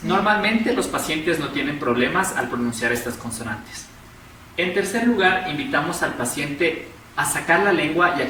Normalmente los pacientes no tienen problemas al pronunciar estas consonantes. En tercer lugar, invitamos al paciente a sacar la lengua y a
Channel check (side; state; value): both; identical; correlation 1.00